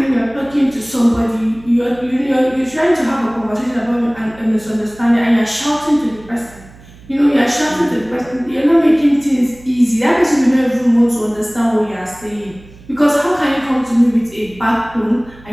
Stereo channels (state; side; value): noise; right; hum, 22 dB below the sound